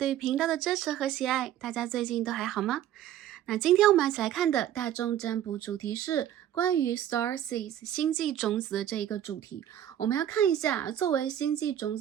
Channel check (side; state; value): left; quieter; 11.3 dB